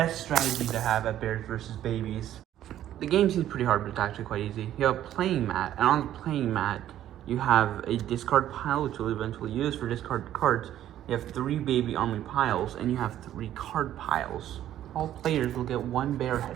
strategies to have at Bears versus Babies. The game seems pretty hard, but it's actually quite easy. You have a playing mat, and on the playing mat, you have a discard pile, which you'll eventually use for discard cards. You have 3 baby army piles, and you have 3 card piles. All players will get 1 bear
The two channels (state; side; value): quieter; left; 12.0 dB